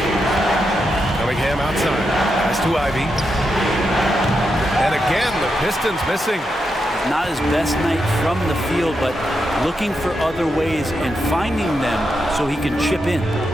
Cunningham outside. Pass to Ivy. And again, the Pistons missing. Not his best night from the field, but looking for other ways and finding them so he can chip in.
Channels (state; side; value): normal; both; correlation 0.85